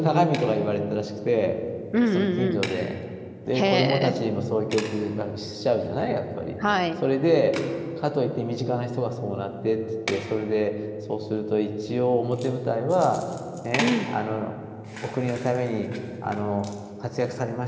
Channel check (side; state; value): both; identical; correlation 1.00